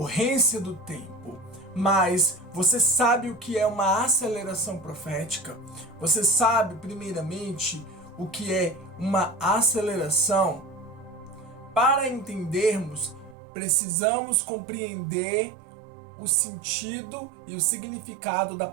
do tempo. Mas você sabe o que é uma aceleração profética? Você sabe, primeiramente, o que é uma aceleração? Para entendermos, precisamos compreender o sentido e o significado da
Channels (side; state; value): left; drops out; at 13.4 s